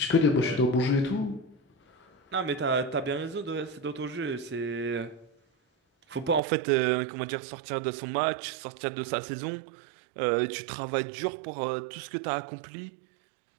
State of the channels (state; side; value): drops out; left; at 6.4 s